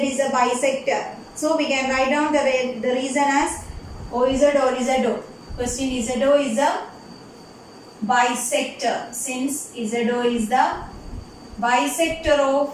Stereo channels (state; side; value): identical; both; correlation 1.00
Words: a bisector. So we can write down the reason as OZ or ZO. Question ZO is a bisector. Since ZO is the bisector of